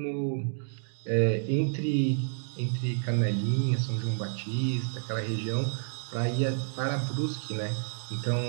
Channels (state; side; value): silent; left; digital silence